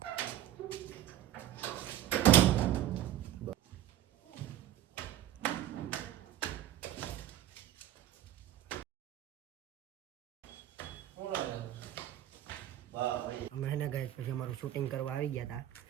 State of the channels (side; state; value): left; quieter; 12.5 dB